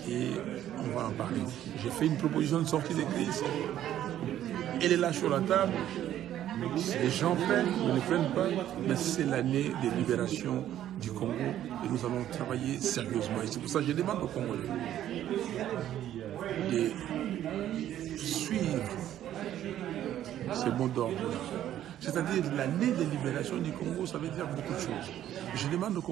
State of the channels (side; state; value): left; quieter; 11.8 dB